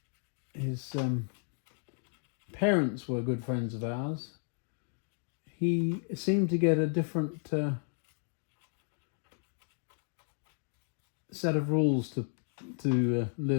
his parents were good friends of ours, he seemed to get a different set of rules to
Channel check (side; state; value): right; silent; 55 dB below the other